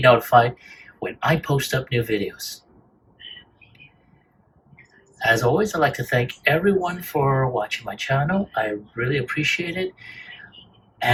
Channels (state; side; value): identical; both; correlation 1.00